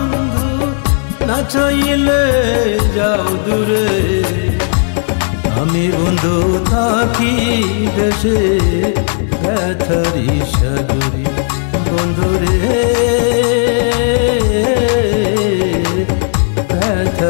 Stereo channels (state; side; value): silent; right; digital silence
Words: না চাইলে যাও দূরে। আমি বন্ধু থাকি দেশে ব্যথারি সাগরে, বন্ধুরে